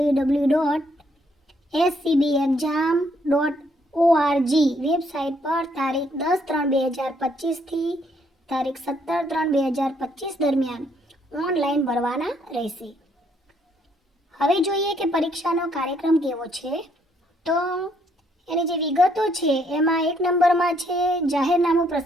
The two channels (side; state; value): both; normal; correlation 0.70